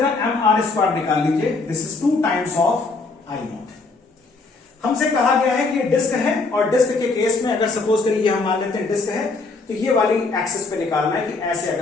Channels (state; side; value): quieter; right; 3.8 dB